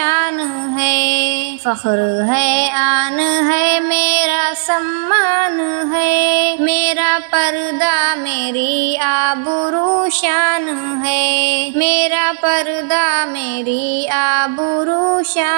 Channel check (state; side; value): silent; left; digital silence